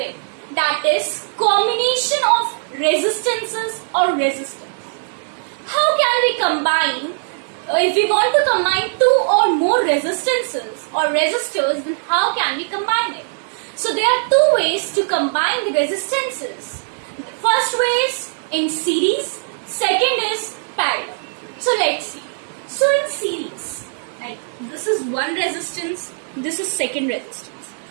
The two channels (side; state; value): left; silent; digital silence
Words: that is combination of resistances or resistance. How can we combine, if we want to combine two or more resistances or resistors, then how can we combine it? So there are two ways to combine the resistances. The first way is in series, second is parallel. So let's see. So in series, like this is one resistance, this is second resistance.